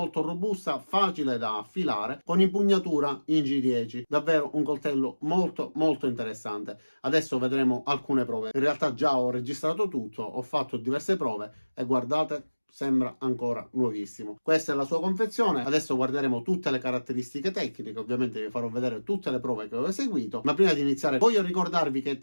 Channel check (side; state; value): both; inverted; correlation -1.00